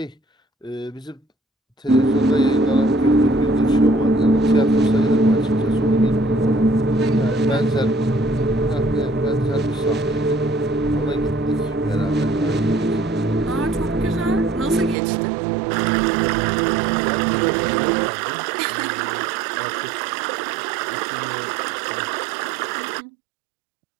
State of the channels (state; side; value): drops out; left; at 15.0 s